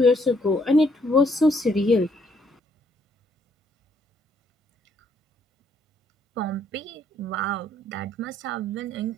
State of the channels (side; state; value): both; normal; correlation 0.69